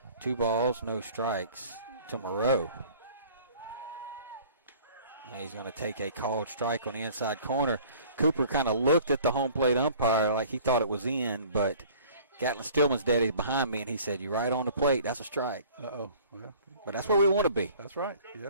2 balls, no strikes to Moreau. And he's going to take a called strike on the inside corner. Cooper kind of looked at the home plate umpire like he thought it was in, but Gatlin Stillman's daddy's behind me, and he said, "You're right on the plate. That's a strike." Uh-oh. Well, but that's where we want to be. That's right. Yeah,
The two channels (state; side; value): inverted; both; correlation -0.50